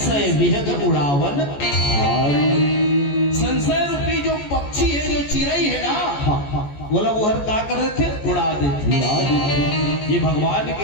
विहग उड़ावन। संशय रूपी जो पक्षी है, जो चिड़ई है ना, बोला वो हर का कर देते, उड़ा देते। ये भगवान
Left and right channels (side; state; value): right; late; 14 ms